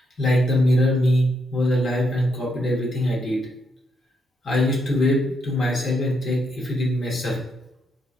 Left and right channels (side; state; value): both; normal; correlation 0.78